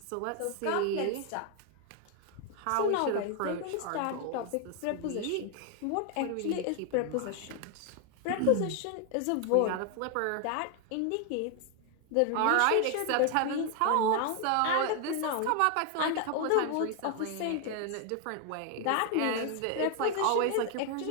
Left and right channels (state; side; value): different; both; correlation 0.00